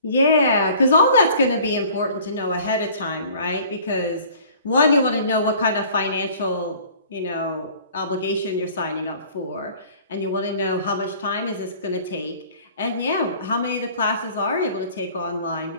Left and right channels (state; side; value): inverted; both; correlation -0.50